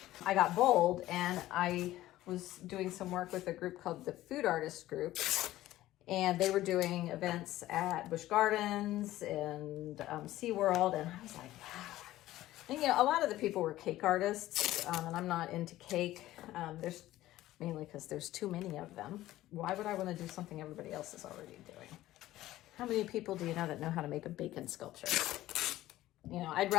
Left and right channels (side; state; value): right; quieter; 15.3 dB